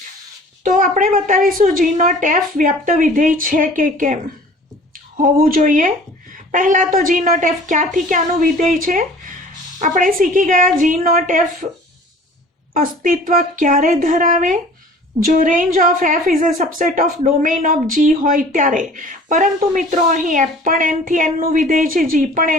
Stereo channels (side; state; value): both; normal; correlation 0.47